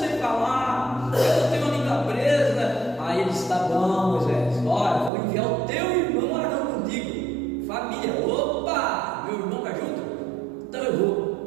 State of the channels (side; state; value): left; drops out; at 5.1 s